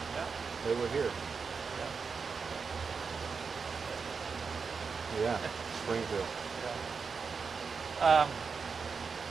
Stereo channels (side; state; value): left; quieter; 5.3 dB